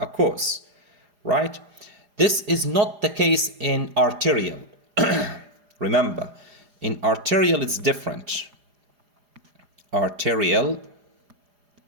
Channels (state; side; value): late; left; 4.9 ms